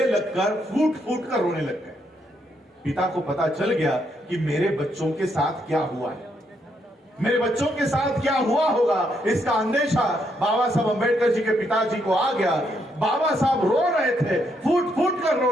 लगकर फूट फूट कर रोने लग गए। पिता को पता चल गया कि मेरे बच्चों के साथ क्या हुआ है, मेरे बच्चों के साथ क्या हुआ होगा, इसका अंदेशा बाबा साहब अंबेडकर जी के पिताजी को आ गया। बाबा साहब रो रहे थे, फूट फूट कर रो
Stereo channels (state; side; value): normal; both; correlation 0.76